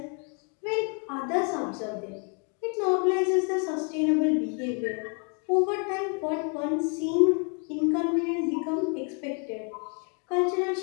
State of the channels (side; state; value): right; quieter; 39.2 dB